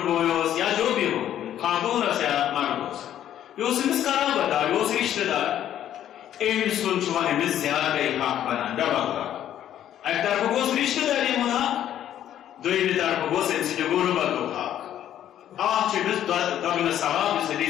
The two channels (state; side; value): quieter; right; 11.1 dB